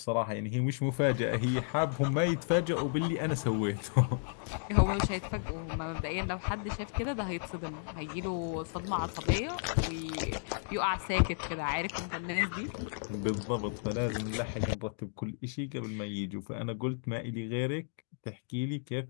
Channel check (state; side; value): silent; right; digital silence